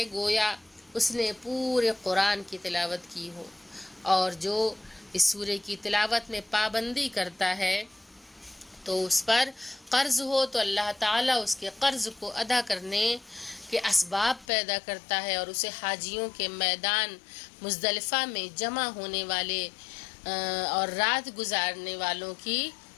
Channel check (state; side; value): drops out; right; at 14.5 s